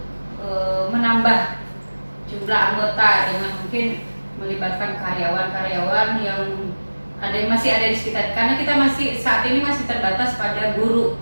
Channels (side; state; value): both; inverted; correlation -1.00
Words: menambah jumlah anggota dengan mungkin melibatkan karyawan-karyawan yang masih ada di sekitar, karena kita saat ini masih terbatas pada guru